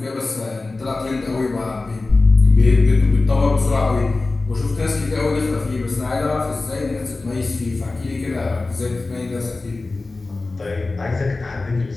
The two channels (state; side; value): quieter; right; 3.4 dB